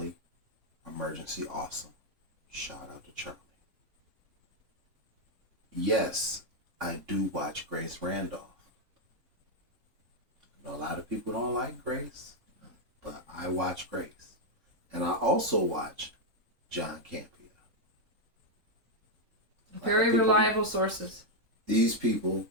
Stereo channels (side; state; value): left; late; 3.9 ms